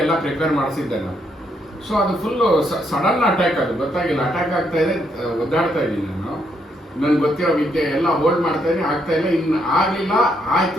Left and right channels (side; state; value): both; normal; correlation 0.75